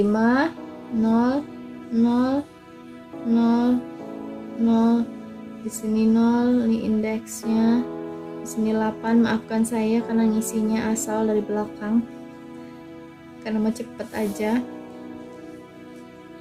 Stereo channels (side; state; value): both; identical; correlation 1.00